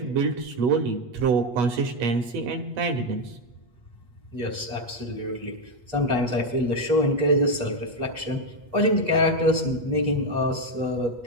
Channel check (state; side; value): late; left; 8.3 ms